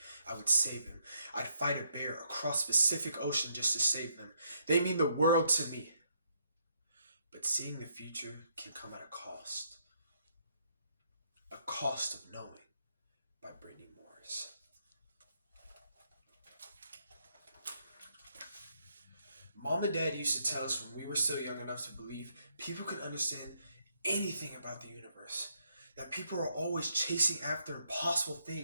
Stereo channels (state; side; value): inverted; both; correlation -0.74